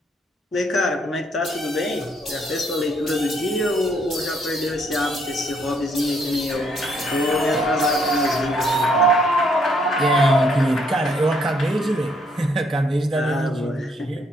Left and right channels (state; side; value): normal; both; correlation 0.69